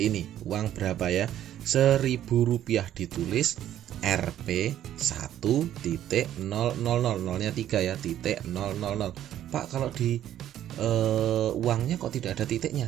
ini. Uang berapa ya? Rp1.000 ditulis Rp 1.000, nolnya 3 ya, titik 000. Pak, kalau di uangnya kok tidak ada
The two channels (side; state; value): left; quieter; 11.6 dB